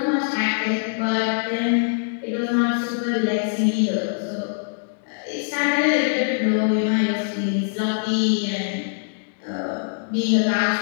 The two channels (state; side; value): silent; right; digital silence